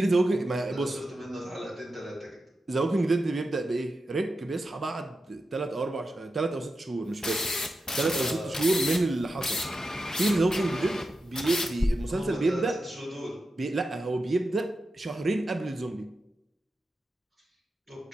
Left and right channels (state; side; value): normal; both; correlation 0.90